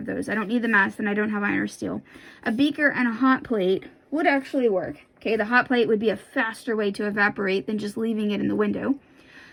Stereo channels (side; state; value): both; identical; correlation 1.00